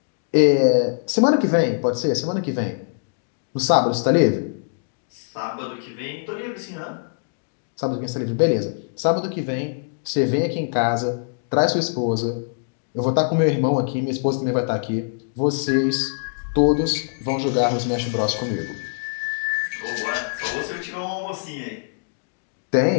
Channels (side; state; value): right; silent; digital silence